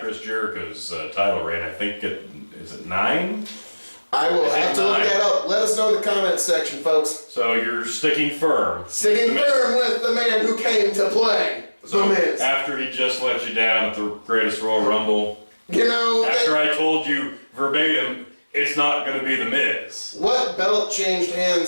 Jericho's title reign. I think is it 9? I will have to look that up. Let us know in the comments section, folks. So you're sticking firm. Sticking firm with the man who came to play The Miz. After he just let you down at the Greatest Royal Rumble. You know... After I told you verbatim, it's not going to be The Miz. What belt changed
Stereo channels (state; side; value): inverted; both; correlation -1.00